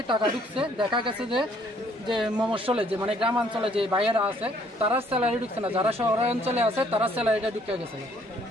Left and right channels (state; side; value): normal; both; correlation 0.63